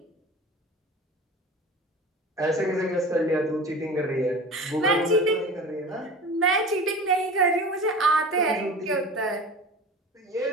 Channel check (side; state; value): both; normal; correlation 0.35